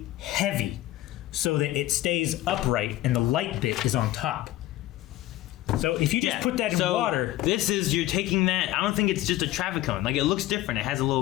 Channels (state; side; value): quieter; right; 15.5 dB